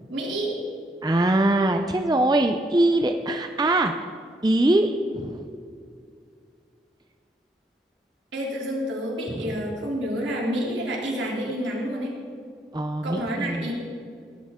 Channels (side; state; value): both; normal; correlation 0.72